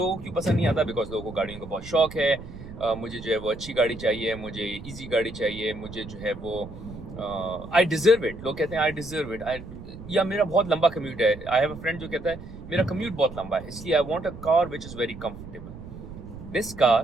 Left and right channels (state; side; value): noise; right; rumble, 14 dB below the sound